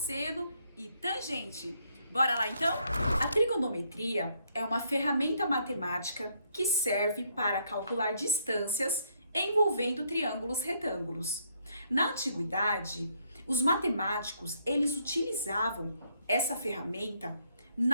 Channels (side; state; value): both; inverted; correlation -0.72